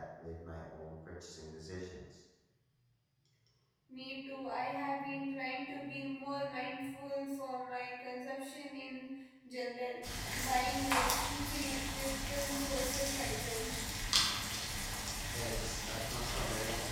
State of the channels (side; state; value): both; identical; correlation 1.00